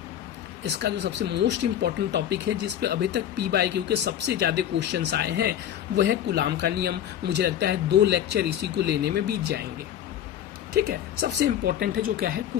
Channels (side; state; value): right; quieter; 10.6 dB